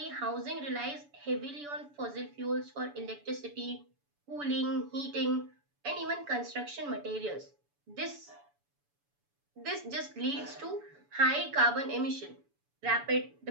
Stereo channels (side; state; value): left; late; 7.0 ms